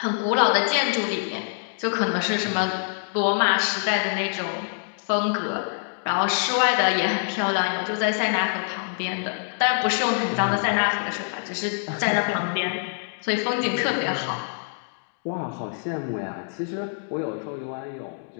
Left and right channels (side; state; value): right; silent; digital silence